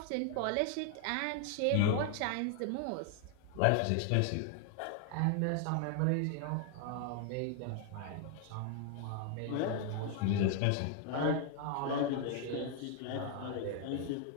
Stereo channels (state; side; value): different; both; correlation 0.00